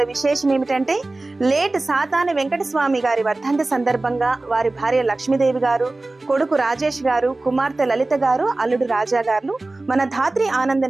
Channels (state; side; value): quieter; left; 3.0 dB